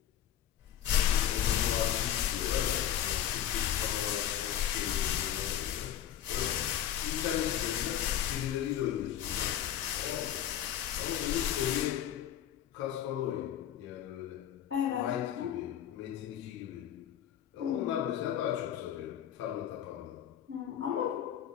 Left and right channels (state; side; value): quieter; right; 10.8 dB